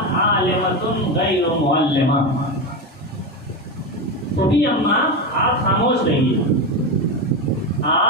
عالمۃ غیر معلمہ، تو بھی اماں آپ خاموش رہیے،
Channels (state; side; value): normal; both; correlation 0.16